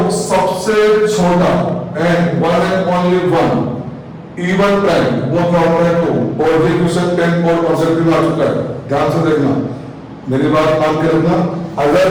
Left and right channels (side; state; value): both; identical; correlation 1.00